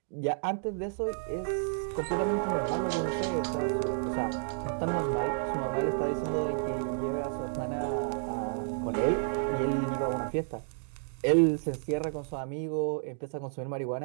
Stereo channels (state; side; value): silent; left; digital silence